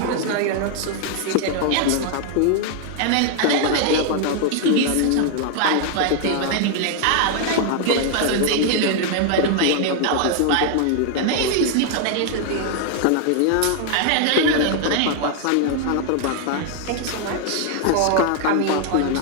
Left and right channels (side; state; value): both; different; correlation 0.00